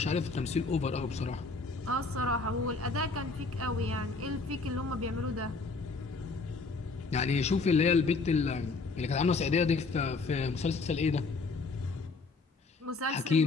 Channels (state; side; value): quieter; right; 4.0 dB